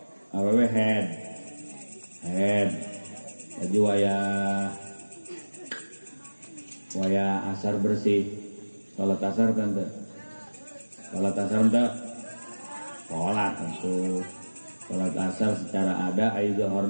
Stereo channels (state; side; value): inverted; both; correlation -1.00